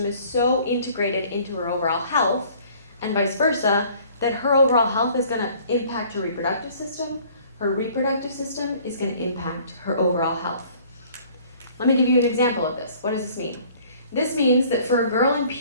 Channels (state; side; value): inverted; both; correlation -0.54